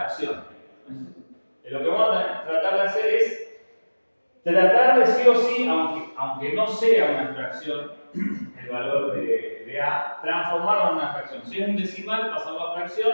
Lo que vamos a tratar de hacer es tratar de sí o sí, aunque no sea una fracción, el valor de A, transformarlo en una fracción. Si es un decimal, pasarlo a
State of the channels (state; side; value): inverted; both; correlation -1.00